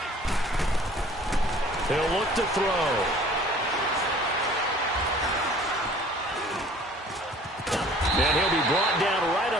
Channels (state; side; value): normal; both; correlation 0.51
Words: 90! He'll look to throw. And he'll be brought down right